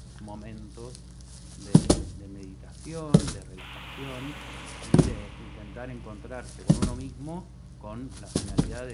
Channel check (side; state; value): both; identical; correlation 1.00